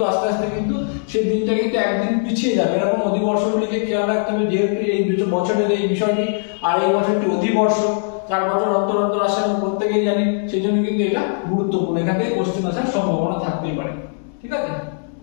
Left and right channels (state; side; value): silent; right; digital silence